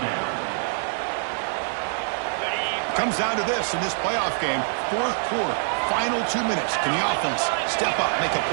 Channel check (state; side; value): silent; left; digital silence